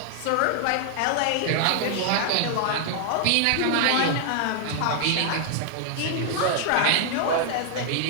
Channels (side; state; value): both; different; correlation 0.00